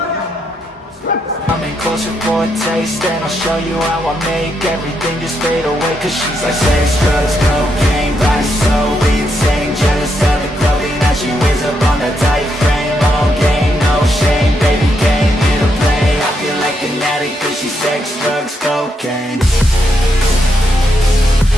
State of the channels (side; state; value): both; normal; correlation 0.79